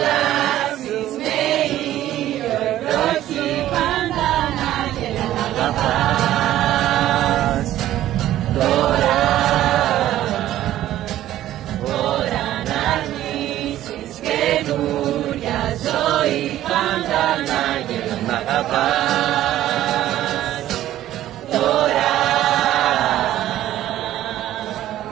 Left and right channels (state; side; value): quieter; left; 13.4 dB